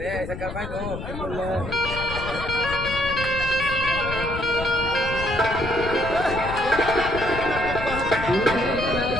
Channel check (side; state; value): left; noise; rumble, 8 dB below the sound